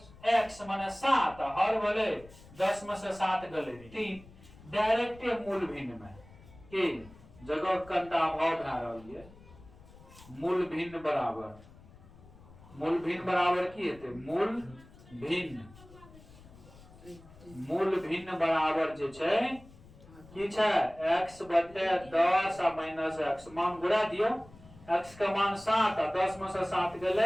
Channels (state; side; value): noise; left; rumble, 22 dB below the sound